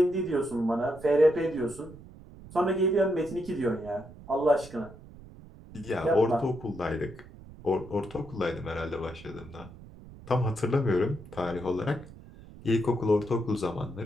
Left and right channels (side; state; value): right; noise; rumble, 18 dB below the sound